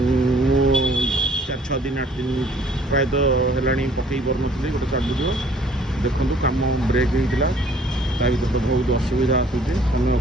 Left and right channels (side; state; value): both; normal; correlation 0.57